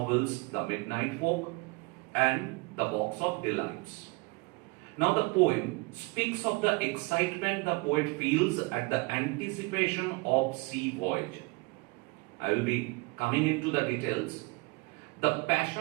The Midnight Folk and The Box of Delights. Now the poem speaks of the excitement the poet feels at the anticipation of sea voyage. I will be coming into the details. The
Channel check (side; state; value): left; quieter; 26.8 dB